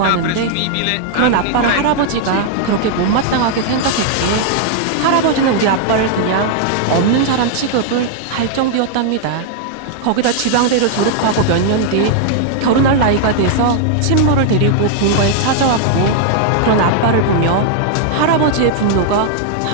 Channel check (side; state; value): both; different; correlation 0.00